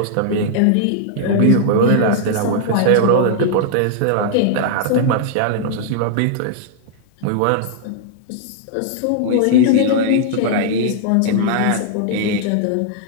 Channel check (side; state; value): both; different; correlation -0.01